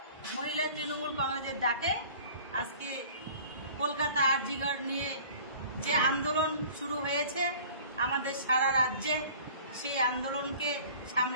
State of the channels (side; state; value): both; inverted; correlation -0.47